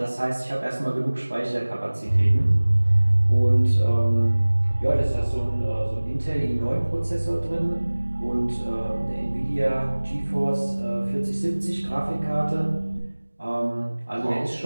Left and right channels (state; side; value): inverted; both; correlation -1.00